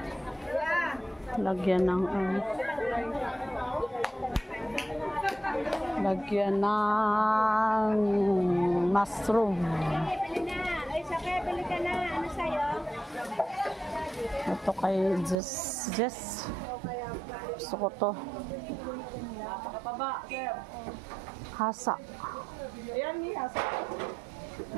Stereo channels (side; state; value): left; drops out; at 15.4 s